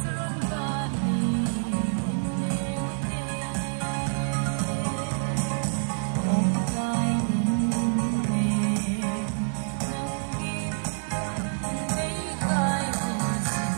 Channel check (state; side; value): silent; left; digital silence